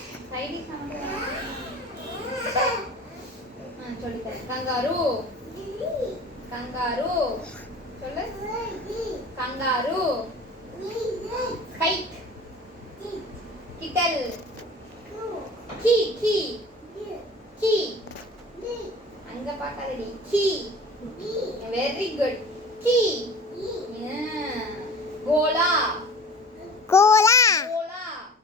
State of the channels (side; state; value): both; normal; correlation 0.41